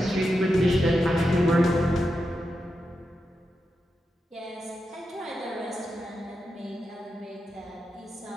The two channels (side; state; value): both; normal; correlation 0.88